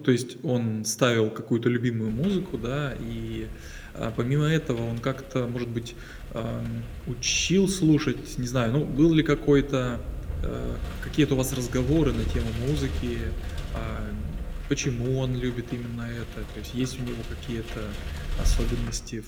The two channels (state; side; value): identical; both; correlation 1.00